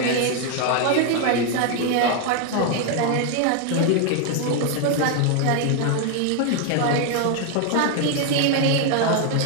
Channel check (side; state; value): both; different; correlation 0.01